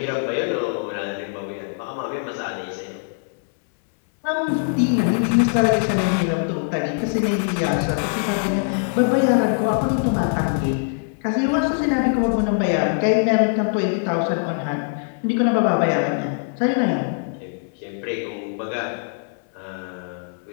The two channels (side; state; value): right; silent; digital silence